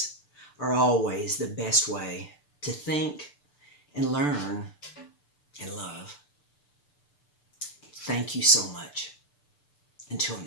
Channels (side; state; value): right; late; 6.8 ms